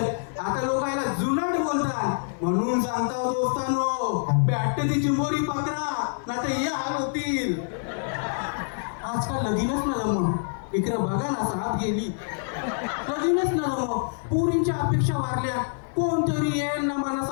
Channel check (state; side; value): silent; right; digital silence